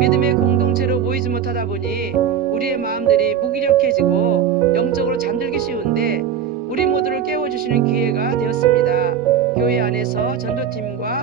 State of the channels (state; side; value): quieter; left; 8.3 dB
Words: 공동체로 모이지 못하다 보니 우리의 마음들이 무기력해지고 영적으로 잠들기 쉬운데 우리 모두를 깨워주시는 기회가 되었습니다. 교회 안에서